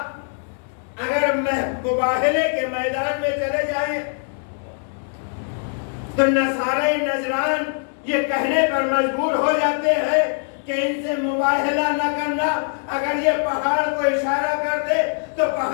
اگر مباہلے کے میدان میں چلے جائیں تو نصارہ نجران یہ کہنے پر مجبور ہو جاتے ہیں کہ ان سے مباہلہ نہ کرنا۔ اگر یہ پہاڑ کو اشارہ کر دے تو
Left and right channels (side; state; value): right; silent; 64 dB below the other